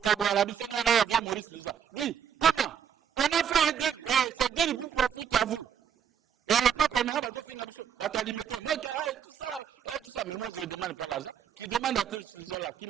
Dis, comment? On a fait un deal, et ce deal vous profite à vous. Et le peuple maintenant va alimenter. Moi, tout ça. Mais moi, je ne demande pas l'argent. Qui demande à ce gens-là, qui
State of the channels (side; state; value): left; quieter; 8.3 dB